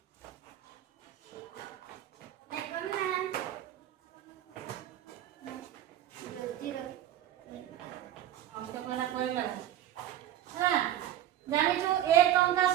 জানিছো 1 টঙ্কা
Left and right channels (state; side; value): quieter; left; 12.2 dB